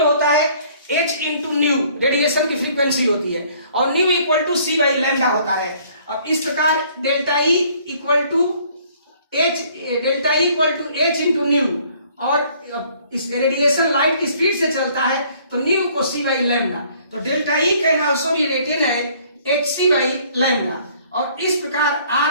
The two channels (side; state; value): both; inverted; correlation -0.59